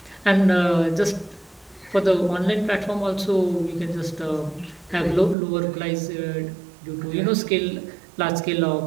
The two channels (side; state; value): left; drops out; at 5.4 s